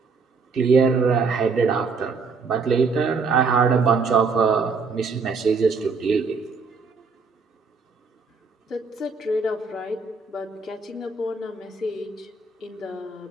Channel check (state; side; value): quieter; left; 4.7 dB